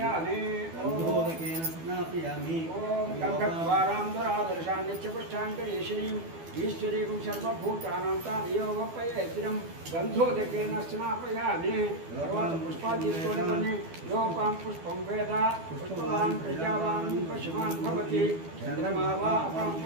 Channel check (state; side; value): late; left; 12 ms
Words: गन्धोदकेन स्नापयामि ओम गन्धद्वारां नित्यपुष्टाङ्गरीश्वरीं ईश्वरीं सर्वभूतानां तामेवोपयेतिरं गन्धोदकेन स्नापयामि सर्वान् पुष्पान् तीसुकोनि योपां पुष्पं वेद पुष्पवान् प्रजावान् पशुमान् भवति चन्द्रमा वा अपां